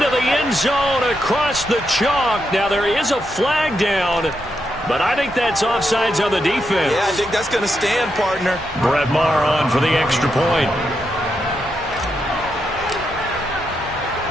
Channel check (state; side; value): normal; both; correlation 0.83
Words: the end zone across the chalk. Now there is a flag down, but I think that's offsides on the defense. Yeah, I think that's going to stand, partner. Brett Maher on for the extra point.